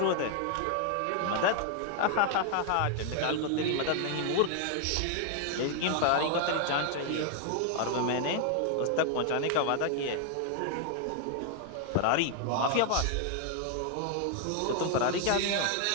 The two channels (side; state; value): both; different; correlation 0.00